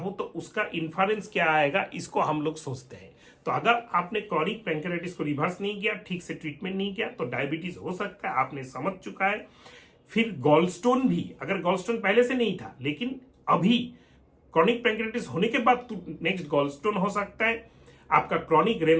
तो उसका इन्फ्लुएंस क्या आएगा, इसको हम लोग सोचते हैं। तो अगर आपने क्रॉनिक पैंक्रियाटाइटिस को रिवर्स नहीं किया, ठीक से ट्रीटमेंट नहीं किया, तो डायबिटीज हो सकता है, आपने समझ चुका है। फिर गॉलस्टोन भी, अगर गॉलस्टोन पहले से नहीं था लेकिन अभी क्रॉनिक पैंक्रियाटाइटिस होने के बाद नेक्स्ट गॉलस्टोन हो सकता है, आपका क्रॉनिक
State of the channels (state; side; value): identical; both; correlation 1.00